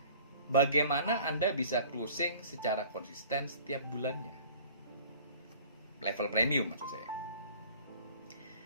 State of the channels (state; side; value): inverted; both; correlation -0.48